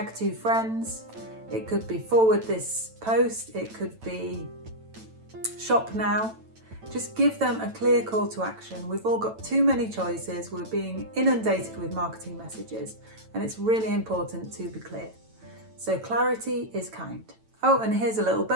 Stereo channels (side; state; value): left; late; 9.0 ms